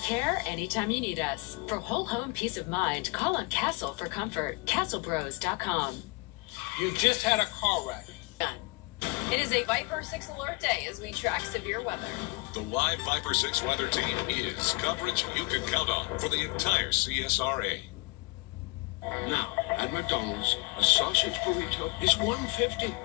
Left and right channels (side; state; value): right; quieter; 27.3 dB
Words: care anytime you need us. For whole home peace of mind, call on Castle for comfort. CastleBros.com. You just had a car wreck. It is a Viper 6 alert day as we track severe weather. The live Viper 6 weather team is coverage you can count on for the entire CSRA. Now, at McDonald's, a sausage burrito is $1.50.